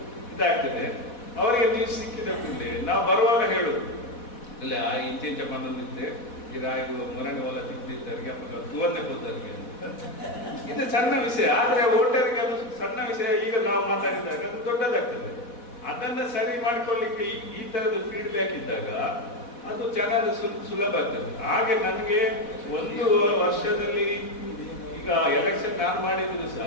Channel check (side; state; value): right; late; 4.1 ms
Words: ಇದಾಗ್ತದೆ, ಅವರಿಗೆ ನ್ಯೂಸ್ ಸಿಕ್ಕಿದ ಕೂಡಲೇ ನಾವು ಬರುವಾಗ ಹೇಳುದು ಇಲ್ಲ ಇಂಚೆಂಚ ಬಂದಿದ್ದೆ ಈಗ ಇದು ಮೊರನೆ ಹೊಲ ತಿಂದಿದ್ದರಿಗೆ ಅಥವಾ ತುವನ್ನೆ ಕೂತರಿಗೆ ಇದು ಸಣ್ಣ ವಿಷಯ, ಆದ್ರೆ ಹೋಟೆಲ್ಗೆ ಅದು ಸಣ್ಣ ವಿಷಯ. ಈಗ ನಾವು ಮಾತಾಡಿದಾಗ ಅದು ದೊಡ್ಡದಾಗ್ತದೆ. ಅದನ್ನ ಸರಿ ಮಾಡ್ಕೊಳ್ಳಿಕ್ಕೆ ಈ ತರದ ಫೀಡ್ಬ್ಯಾಕ್ ಇದ್ದಾಗ ಅದು ಚೆನ್ನಾಗಿ ಸುಲಭ ಆಗ್ತದೆ. ಹಾಗೆ ನನಗೆ 1 ವರ್ಷದಲ್ಲಿ ಈಗ ಎಲೆಕ್ಷನ್ ನಾನು ಮಾಡಿದ್ರು